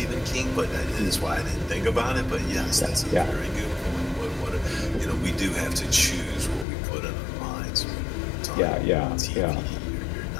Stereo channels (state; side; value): drops out; right; at 6.7 s